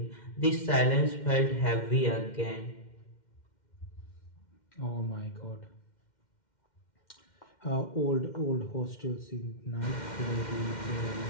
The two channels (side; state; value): right; late; 2.1 ms